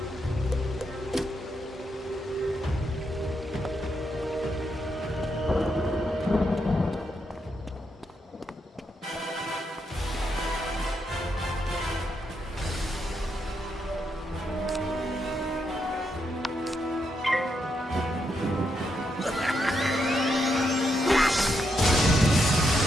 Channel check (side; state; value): both; normal; correlation 0.81